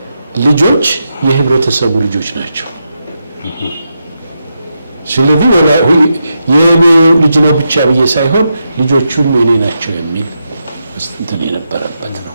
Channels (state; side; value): inverted; both; correlation -0.85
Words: ልጆች የህብረተሰቡ ልጆች ናቸው። ስለዚህ የኔ ልጅ ነው ብቻ ብዬ ሳይሆን ልጆቹም የኔ ናቸው የሚል እንትን የነበረበት ነው።